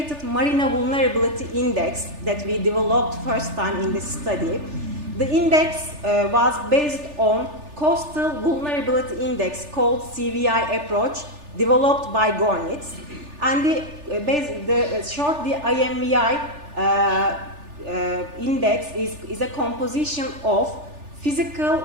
marina vulnerability index that we developed first time in this study. The index was based on Coastal Vulnerability Index called CVI approach developed by Gornitz. And the IMVI index is a composition of physical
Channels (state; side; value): late; left; 3.4 ms